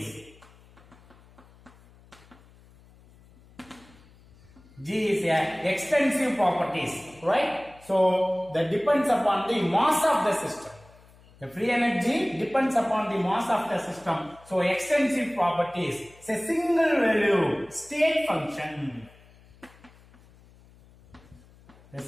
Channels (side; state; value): left; noise; hum, 26 dB below the sound